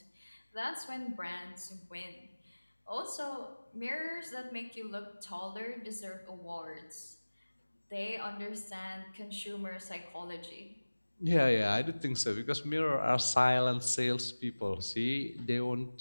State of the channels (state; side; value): inverted; both; correlation -1.00